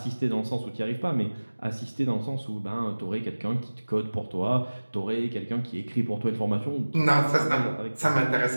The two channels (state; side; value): inverted; both; correlation -1.00